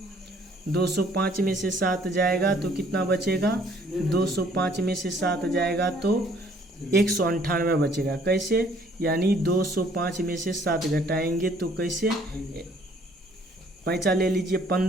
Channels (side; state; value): both; normal; correlation 0.61